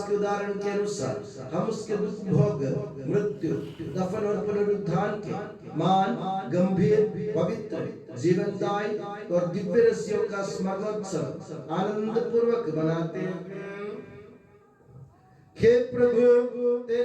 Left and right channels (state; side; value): identical; both; correlation 1.00